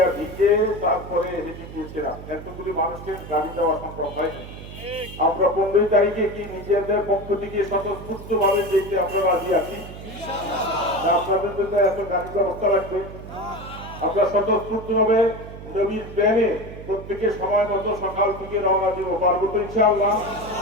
ভিজে তারপরে হেঁটে গিয়েছিলাম, এতগুলি মানুষকে গাড়ি দেওয়া সম্ভব হয়নি। আমরা 15 তারিখে কি নিজেদের পক্ষ থেকে স্বতঃস্ফূর্ত ভাবে যেতে আমরা রাজি আছি? আপনাদের জন্য এত গাড়ি ব্যবস্থা রাখবে, আমরা স্বতঃস্ফূর্ত ভাবে নবীর প্রেমে প্রত্যেকে সময় মতো সকাল থেকে রওনা দিব, পারবো তো ইনশাআল্লাহ?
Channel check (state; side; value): noise; right; hum, 13 dB below the sound